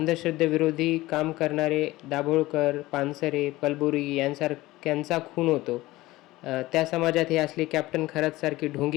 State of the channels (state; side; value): quieter; right; 18.4 dB